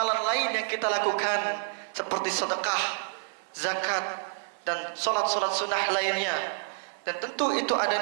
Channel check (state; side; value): silent; left; digital silence